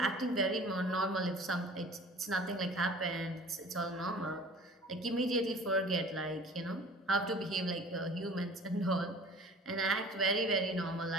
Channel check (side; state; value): both; normal; correlation 0.45